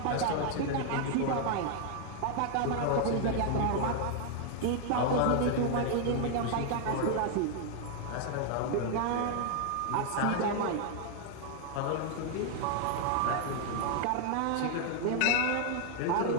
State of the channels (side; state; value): both; different; correlation 0.00